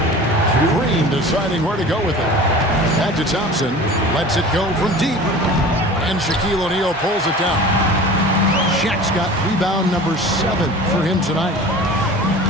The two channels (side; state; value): both; normal; correlation 0.39